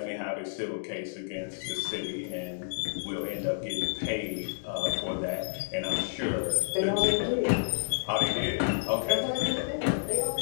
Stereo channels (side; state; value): right; silent; digital silence